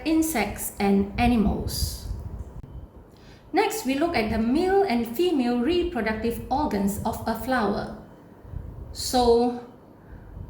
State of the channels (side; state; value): both; identical; correlation 1.00